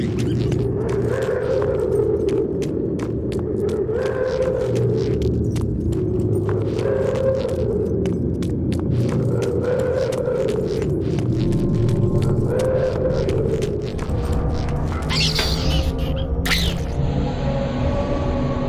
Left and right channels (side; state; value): both; identical; correlation 1.00